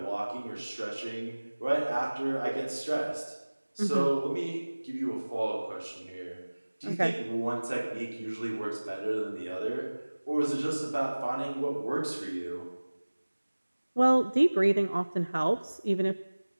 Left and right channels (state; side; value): inverted; both; correlation -1.00